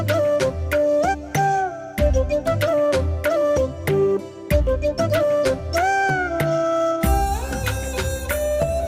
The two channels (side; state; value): both; identical; correlation 1.00